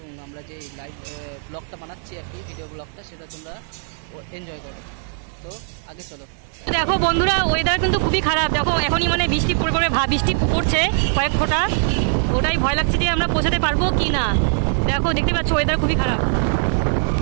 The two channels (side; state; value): left; silent; 65 dB below the other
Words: আমরা যে লাইভ ব্লগটা বানাচ্ছি আর কি, ভিডিও ব্লগটা, সেটা তোমরা এনজয় করো। তো আগে চলো। দেখো বন্ধুরা, ওয়েদার কিন্তু খুবই খারাপ। দেখো এখনই মানে বৃষ্টি পড়বে, বৃষ্টি পড়ছে কয়েক ফোঁটা। ওটাই ভয় লাগছে যে আমরা পৌঁছাতে পারবো কি না। দেখো দেখতে পাচ্ছ ওয়েদার খুবই খারাপ,